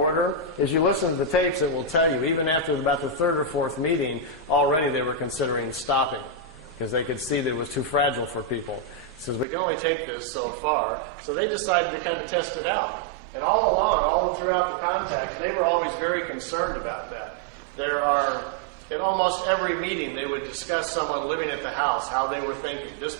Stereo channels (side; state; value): left; drops out; at 9.5 s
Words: As you listen to the tapes, it will tell you, even after about the third or fourth meeting, already they were considering stopping. because they could see that it was too fragile for people. He says, we can only take this so far. So they decided to kind of test it out. And all along, all throughout the contact, they were always very concerned about that. In almost every meeting, they would discuss someone living at the house, how they were thinking. This